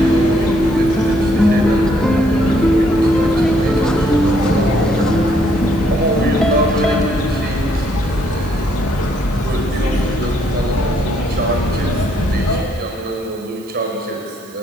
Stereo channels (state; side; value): noise; right; hiss, 24 dB below the sound